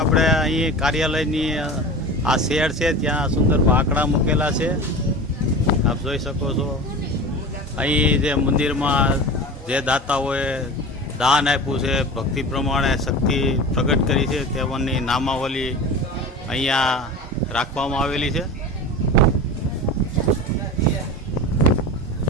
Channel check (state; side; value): normal; both; correlation 0.32